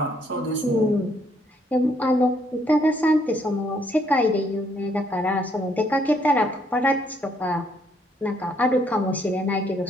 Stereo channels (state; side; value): normal; both; correlation 0.69